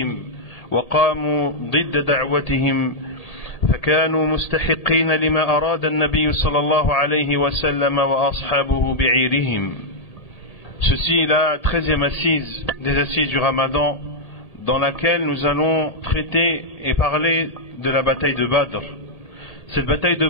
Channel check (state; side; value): late; right; 1.8 ms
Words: وقاموا ضد دعوتهم، فكانوا مستحقين لما أراد النبي صلى الله عليه وسلم وأصحابه بعيرهم. Ceci est la 13e assise des assises du Ramadan, dans laquelle nous allons traiter et parler de la bataille de Badr. Cette bataille de